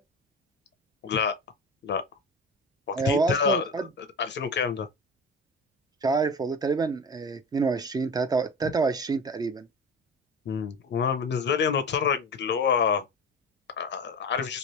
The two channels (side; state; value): both; normal; correlation 0.28